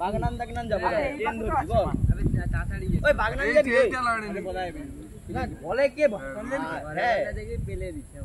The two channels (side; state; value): both; identical; correlation 1.00